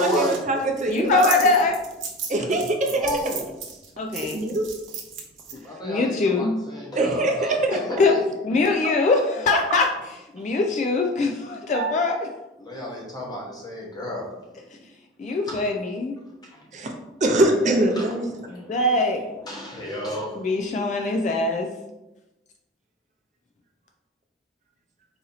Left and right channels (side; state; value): both; normal; correlation 0.31